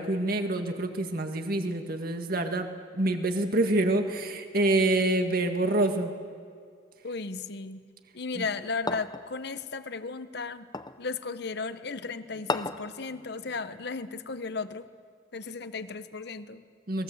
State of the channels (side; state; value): both; normal; correlation 0.40